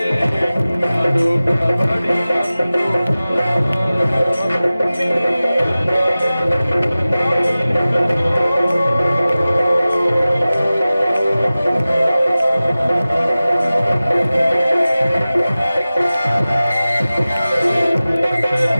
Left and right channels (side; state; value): both; inverted; correlation -0.97